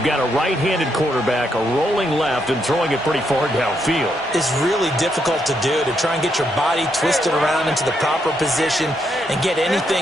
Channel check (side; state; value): both; normal; correlation 0.78